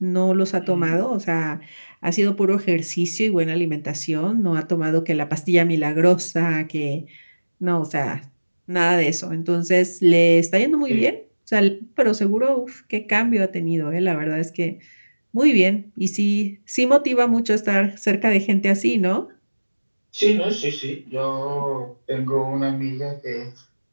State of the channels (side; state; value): both; inverted; correlation -1.00